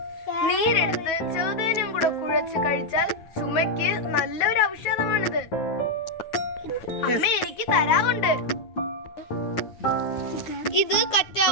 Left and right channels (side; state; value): right; late; 9.3 ms